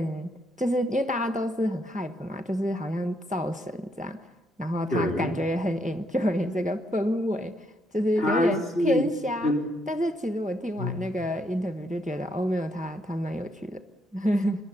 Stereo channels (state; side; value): normal; both; correlation 0.75